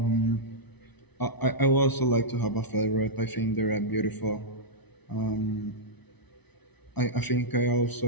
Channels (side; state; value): right; late; 0.99 ms